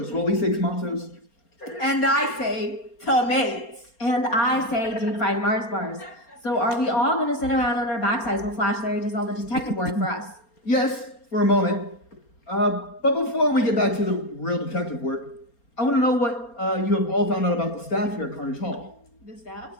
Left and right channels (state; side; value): late; right; 4.3 ms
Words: Well, we say tomatoes. And I say tomatoes. And I say deep fried Mars bars. So are we all gonna sit around on our backsides while Flash Larry does all the detective work for us? Yes, for a moment. But before we get back to the real detective work, I want to know what you have all found out about the staff here at Carnage Hall. The staff?